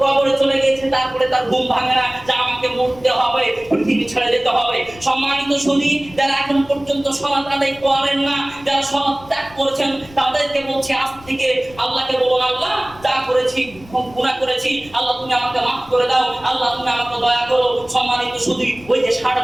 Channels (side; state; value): left; noise; rumble, 22 dB below the sound